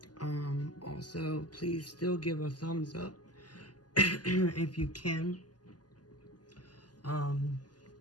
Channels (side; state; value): right; late; 0.70 ms